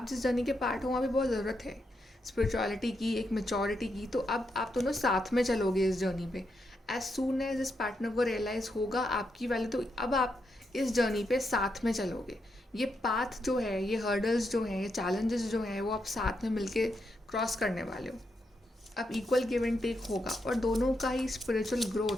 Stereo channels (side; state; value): both; normal; correlation 0.82